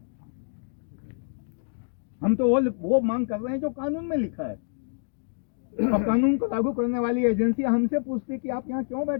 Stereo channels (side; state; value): right; silent; 60 dB below the other